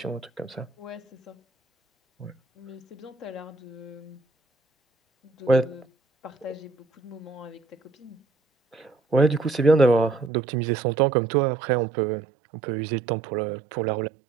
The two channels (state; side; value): drops out; left; at 10.3 s